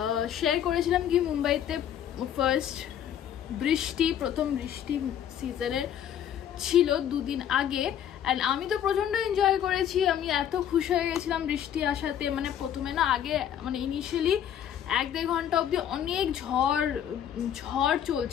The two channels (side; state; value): right; quieter; 9.9 dB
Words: শেয়ার করেছিলাম কি মুম্বাইতে ফার্স্ট বৃষ্টি, প্রথম বৃষ্টি সিজনের ছিল দুদিন আগে, অ্যান্ড আমি তো প্রচণ্ড এনজয় করেছি। আমি এত খুশি হয়ে গেছিলাম বৃষ্টি আসাতে। মানে প্রথমে না আগে মানে ইনিশিয়ালি 1-1.5 ঘন্টা অবধি অনেক ঝড়